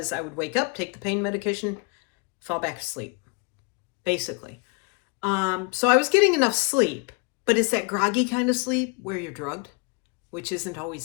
I would wake up, take the pain medication, fall back asleep, basically. So I was getting enough sleep, but it's that groggy kind of sleep where you're drugged, which isn't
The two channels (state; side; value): quieter; right; 31.3 dB